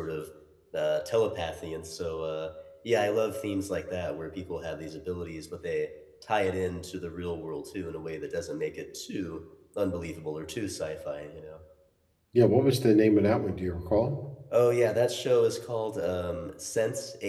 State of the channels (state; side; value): identical; both; correlation 1.00